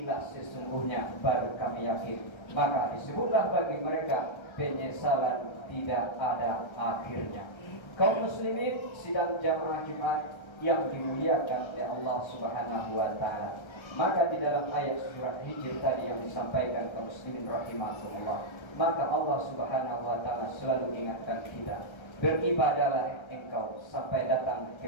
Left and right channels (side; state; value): right; late; 1.3 ms